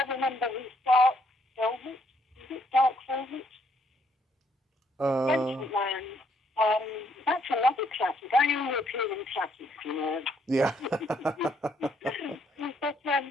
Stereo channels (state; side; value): normal; both; correlation 0.70